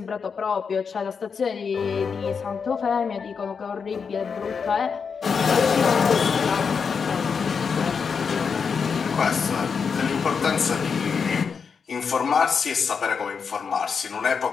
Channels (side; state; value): right; quieter; 5.9 dB